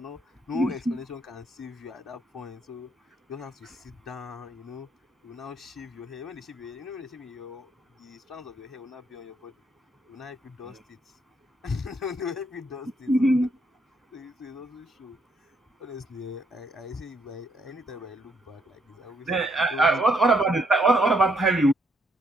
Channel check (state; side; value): normal; both; correlation 0.71